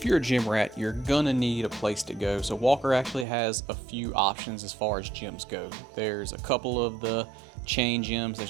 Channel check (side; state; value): left; drops out; at 3.2 s